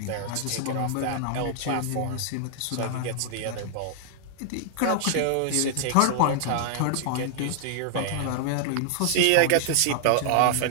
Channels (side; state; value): both; different; correlation -0.01